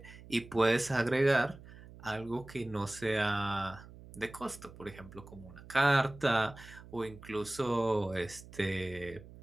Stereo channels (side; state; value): right; noise; hum, 18 dB below the sound